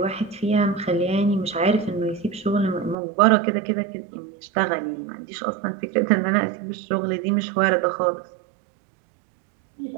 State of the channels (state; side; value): drops out; left; at 3.0 s